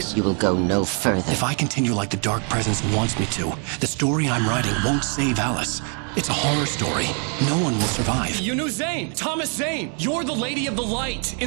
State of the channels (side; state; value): left; quieter; 39.3 dB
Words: You will go no further. If I continue like the Dark Presence wants me to, the story I'm writing won't save Alice. It's a horror story. No one will survive. You knew Zane! Thomas Zane! You're the Lady of the Light